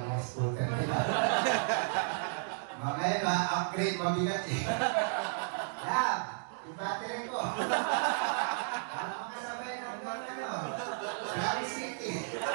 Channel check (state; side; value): silent; left; digital silence